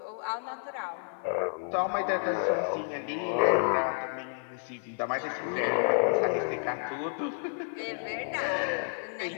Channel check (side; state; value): right; silent; 57 dB below the other